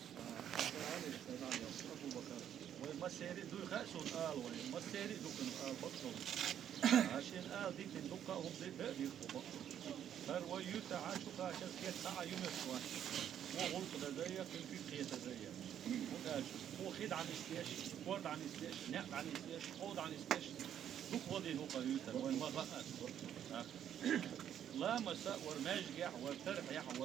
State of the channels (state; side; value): quieter; left; 9.8 dB